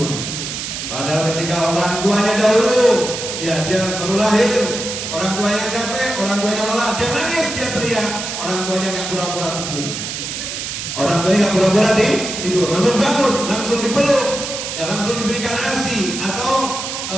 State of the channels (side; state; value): right; noise; hiss, 5 dB below the sound